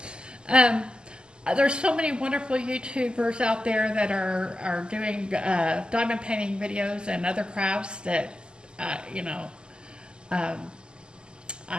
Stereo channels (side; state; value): left; late; 0.048 ms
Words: There's so many wonderful YouTubers out there that are doing diamond painting videos and other crafts that,